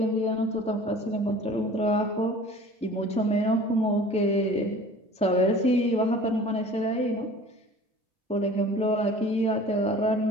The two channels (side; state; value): both; normal; correlation 0.45